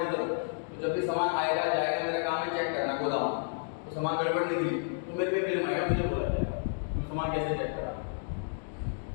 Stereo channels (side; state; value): right; silent; digital silence